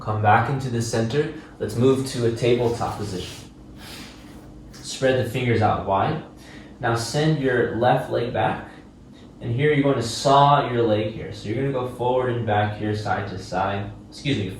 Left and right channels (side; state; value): both; identical; correlation 1.00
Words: Come back into the center. Let's move to a tabletop position. Spread the fingers out wide. Now send your left leg back. And here you're going to saw your leg here. So you're going to go forward and back here, side to side.